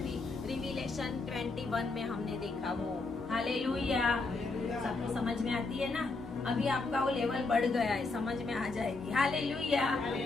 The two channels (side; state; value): right; quieter; 3.6 dB